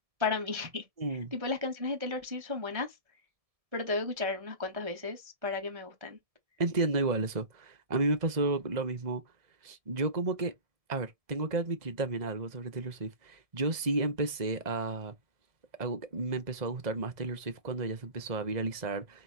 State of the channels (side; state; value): left; late; 1.7 ms